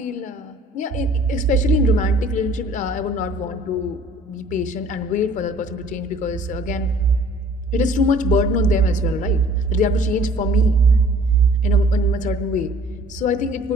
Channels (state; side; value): normal; both; correlation 0.53